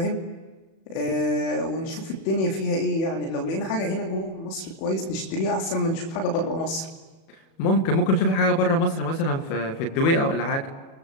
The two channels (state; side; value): late; right; 37 ms